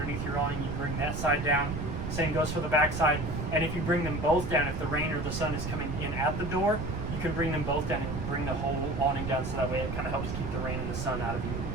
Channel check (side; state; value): right; noise; rumble, 4 dB below the sound